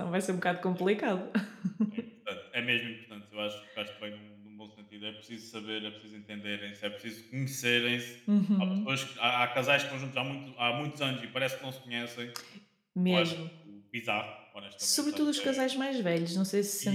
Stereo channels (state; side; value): identical; both; correlation 1.00